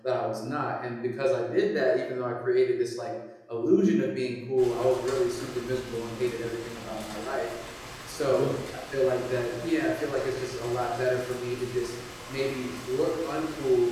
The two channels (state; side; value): identical; both; correlation 1.00